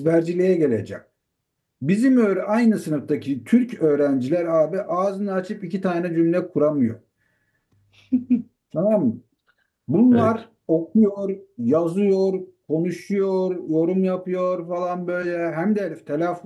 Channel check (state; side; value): identical; both; correlation 1.00